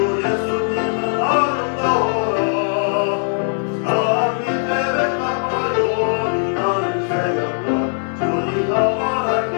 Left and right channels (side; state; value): right; silent; 61 dB below the other